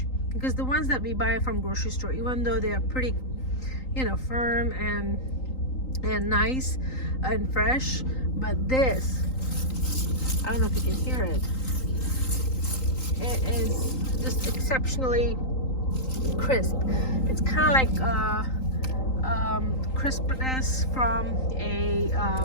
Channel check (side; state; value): right; late; 3.9 ms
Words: because the ones that we buy from grocery store, even though they are pretty, firm and nice and fresh, but this, I don't know if you can hear it, it is just exceptionally crisp. It's kind of like crispness from a